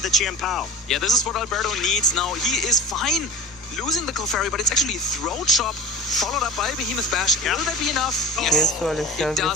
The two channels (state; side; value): normal; both; correlation 0.32